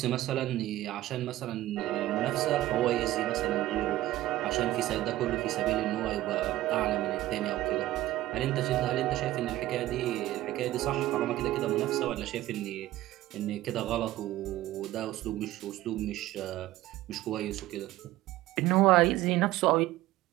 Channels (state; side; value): quieter; left; 15.5 dB